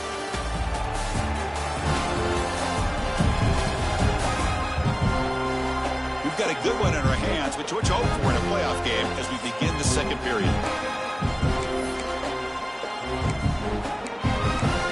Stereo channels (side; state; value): both; identical; correlation 1.00